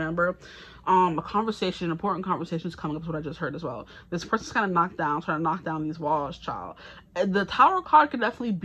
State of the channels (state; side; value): identical; both; correlation 1.00